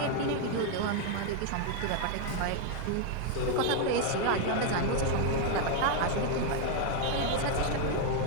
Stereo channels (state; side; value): different; both; correlation 0.00